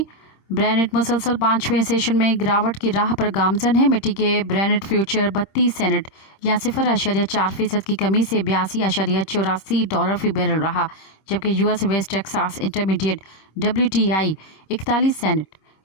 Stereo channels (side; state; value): right; late; 26 ms